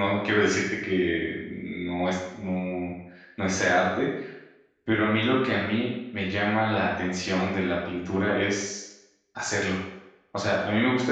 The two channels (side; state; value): both; identical; correlation 1.00